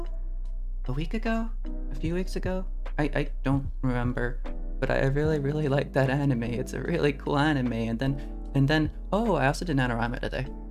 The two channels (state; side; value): identical; both; correlation 1.00